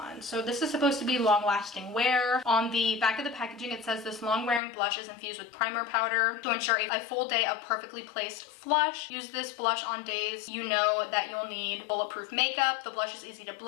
So this is supposed to be long lasting wear. On the back of the packaging, it says this long wearing blush is infused with primer powder to ensure a full day of perfectly placed flush. Use this blush on days you know that you'll need bulletproof makeup. The blush is easy to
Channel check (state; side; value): drops out; right; at 4.6 s